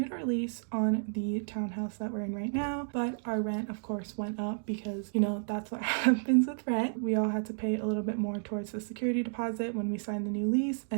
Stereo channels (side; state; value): left; silent; digital silence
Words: our lease on the townhouse that we're in right now, but our rent of course went up because that's what happens with rent. We all had to pay a little bit more towards the security deposit when we signed the new lease,